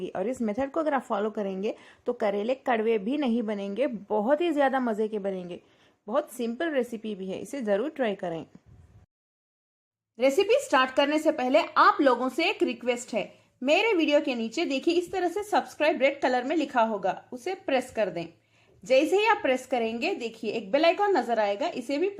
और इस मेथड को अगर आप फॉलो करेंगे तो करेले कड़वे भी नहीं बनेंगे, बहुत ही ज़्यादा मज़े के बनेंगे। बहुत सिंपल रेसिपी भी है, इसे ज़रूर ट्राई करें। रेसिपी स्टार्ट करने से पहले आप लोगों से एक रिक्वेस्ट है। मेरे वीडियो के नीचे देखिए, इस तरह से सब्सक्राइब रेड कलर में लिखा होगा, उसे प्रेस कर दें। जैसे ही आप प्रेस करेंगे, देखिए एक बेल आइकॉन नजर आएगा, इसे भी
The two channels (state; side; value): identical; both; correlation 1.00